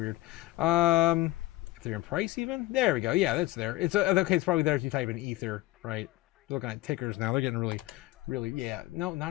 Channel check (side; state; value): right; quieter; 18.3 dB